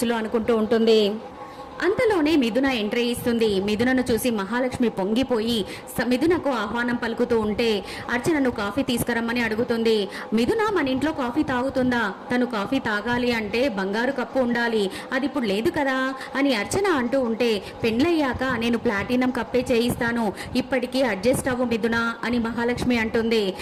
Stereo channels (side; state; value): both; identical; correlation 1.00